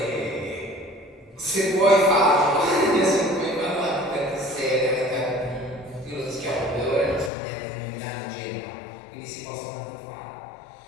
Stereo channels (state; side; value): drops out; right; at 7.3 s